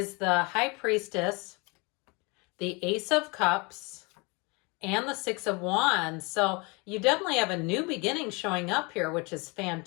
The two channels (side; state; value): right; quieter; 28.6 dB